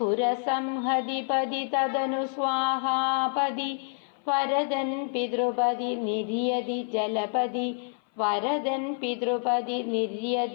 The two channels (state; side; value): silent; right; 56 dB below the other